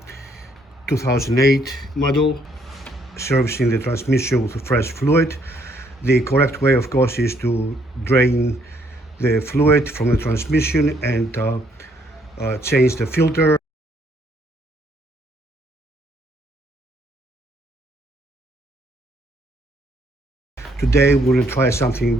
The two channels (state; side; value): normal; both; correlation 0.69